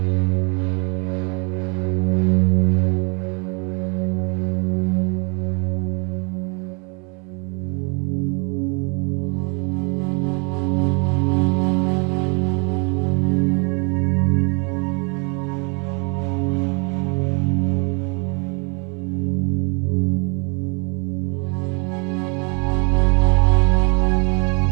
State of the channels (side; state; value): left; quieter; 34.0 dB